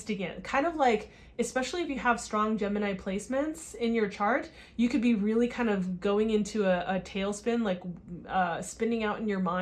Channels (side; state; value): both; identical; correlation 1.00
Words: it. Kind of like, especially if you have strong Gemini placements in your chart, you could be really kind of going into a tailspin, like spinning out in your